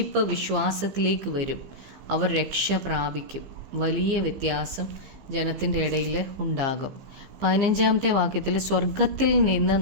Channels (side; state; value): left; late; 15 ms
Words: വിശ്വാസത്തിലേക്ക് വരും. അവർ രക്ഷ പ്രാപിക്കും. വലിയ വ്യത്യാസം ജനത്തിൻ്റെ ഇടയിൽ ഉണ്ടാകും. 15 വാക്യത്തിൽ, സ്വർഗത്തിൽ നിന്ന്